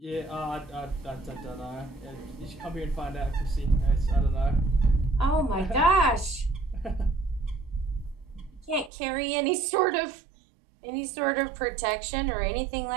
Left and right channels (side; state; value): left; drops out; at 8.9 s